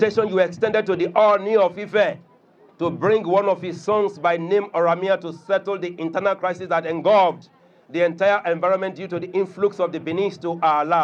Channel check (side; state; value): both; identical; correlation 1.00